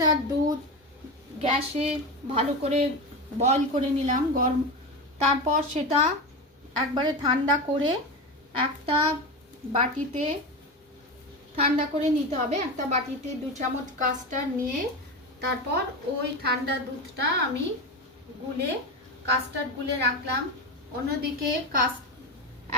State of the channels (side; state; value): both; normal; correlation 0.20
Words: দুধ গ্যাসে ভালো করে বয়ল করে নিলাম গরম, তারপর সেটা একবারে ঠান্ডা করে একটা বাটিতে ঠান্ডা করে নিতে হবে। একটা বাটিতে 2 চামচ কাস্টার্ড নিয়ে তারপর ওই ঠান্ডা দুধটা আমি কাস্টার্ড গুলে রাখলাম। অন্যদিকে